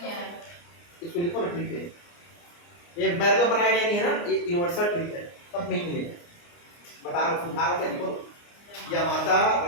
आया। इसको लिखो ना ट्रिक है ये मैंने तो बनाया गया नहीं है ना ये यूनिवर्सल ट्रिक है सब में ही मिलेगा बता रहा हूँ समझा रहा हूँ लिखो या माता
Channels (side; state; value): right; late; 29 ms